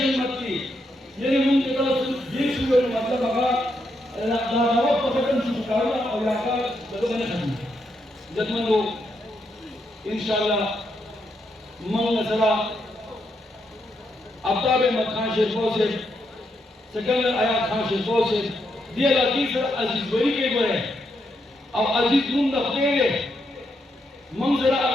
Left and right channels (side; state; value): both; normal; correlation 0.80